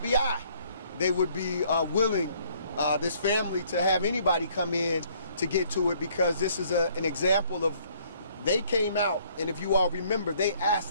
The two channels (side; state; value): both; inverted; correlation -0.63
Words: they would be willing, this family, to have anybody come in to get to it, because this is an example of, they came out, and if you all remember,